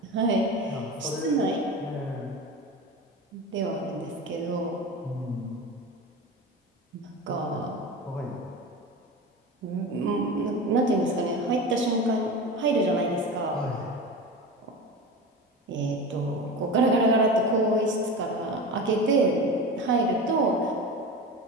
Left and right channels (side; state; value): both; normal; correlation 0.29